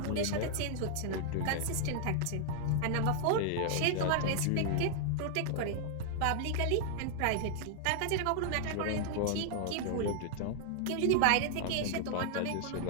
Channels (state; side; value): different; both; correlation -0.01